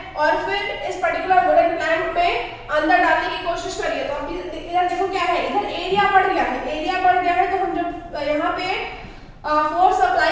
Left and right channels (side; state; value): both; identical; correlation 1.00